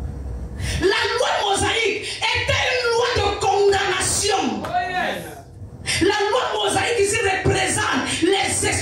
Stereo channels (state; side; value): identical; both; correlation 1.00